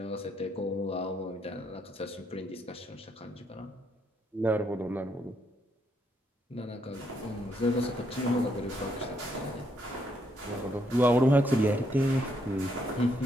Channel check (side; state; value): both; normal; correlation 0.75